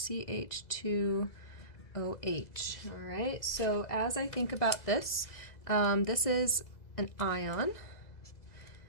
All right, so as I think about this, this is an ion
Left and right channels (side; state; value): right; late; 2.0 ms